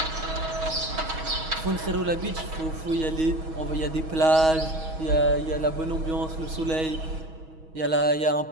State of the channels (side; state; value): left; late; 6.3 ms